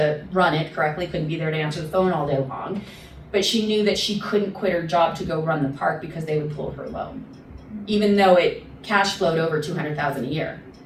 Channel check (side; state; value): both; identical; correlation 1.00